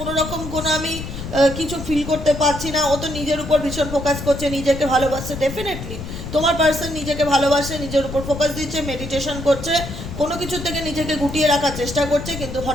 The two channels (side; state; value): left; noise; rumble, 8 dB below the sound